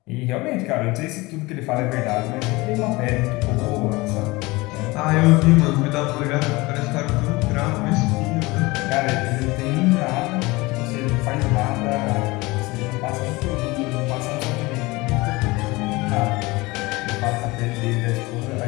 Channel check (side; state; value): right; quieter; 22.5 dB